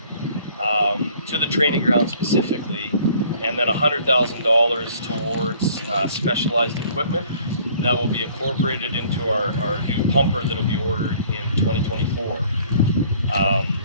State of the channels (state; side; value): inverted; both; correlation -0.56